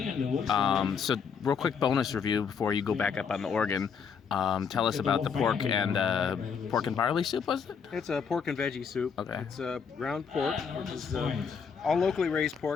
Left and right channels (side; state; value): right; quieter; 6.4 dB